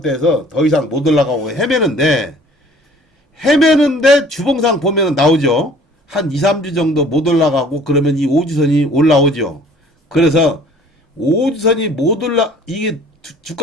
더 이상 못 올라가고 헤매는데 주봉상 보면은 나오죠. 한 2~3주 정도 못 올라가고 그러면 이 5주선이 올라오죠. 그래서 5주선이 이게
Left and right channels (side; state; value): both; normal; correlation 0.52